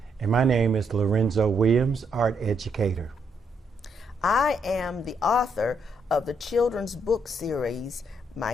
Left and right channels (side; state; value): both; normal; correlation 0.76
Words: And my name is Lorenzo Williams, art educator. I am the author of the children's book series, My